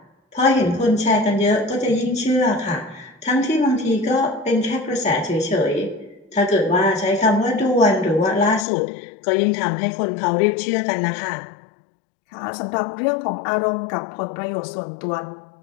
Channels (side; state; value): right; drops out; at 8.7 s